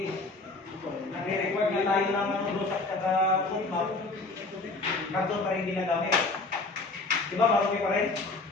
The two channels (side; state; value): right; quieter; 3.4 dB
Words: nagre-record nga tayo ng blue stack at foot map. Karton pa rin ginagamit. Diba? Marumi pa rin.